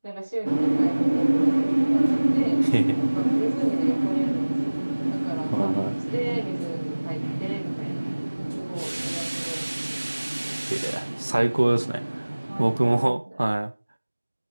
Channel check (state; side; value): inverted; both; correlation -1.00